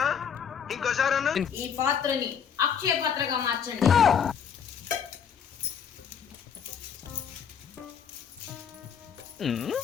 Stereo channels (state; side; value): quieter; right; 7.5 dB